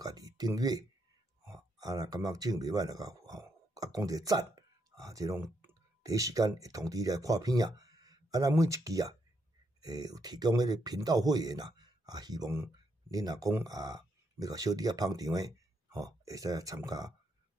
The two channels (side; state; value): both; normal; correlation 0.78